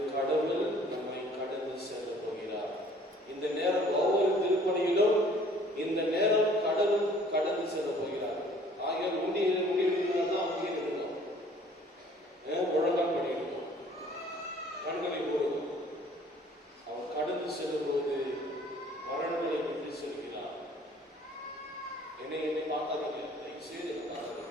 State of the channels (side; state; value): both; normal; correlation 0.55